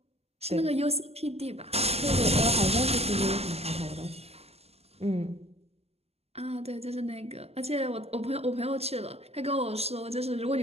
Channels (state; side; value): late; left; 0.29 ms